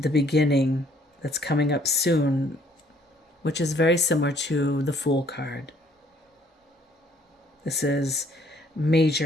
beginning that's coming up soon, which is very similar to the Fool card. This is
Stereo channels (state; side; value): normal; both; correlation 0.62